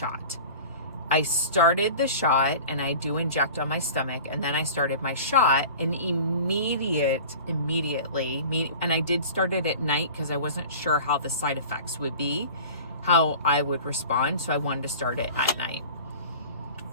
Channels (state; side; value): inverted; both; correlation -0.39